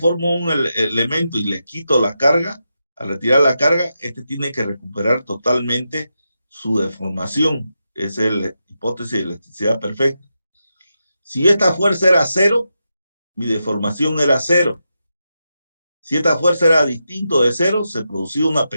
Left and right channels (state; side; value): inverted; both; correlation -0.88